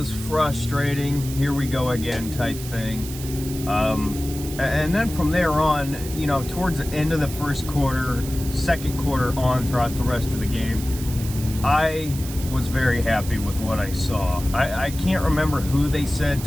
frustrating. Here we go again type thing. And then from there on, towards the end of the first quarter, second quarter on throughout the rest of the game, I was very happy with what I saw. I can't remember who they said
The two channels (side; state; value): right; noise; hiss, 12 dB below the sound